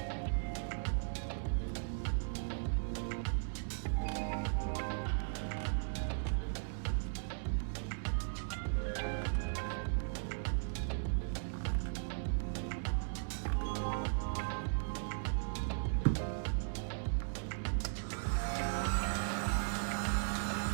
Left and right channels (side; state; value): left; silent; digital silence